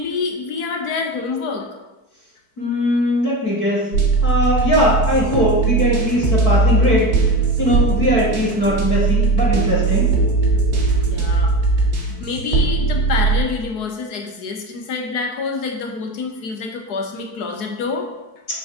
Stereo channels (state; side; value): late; right; 4.7 ms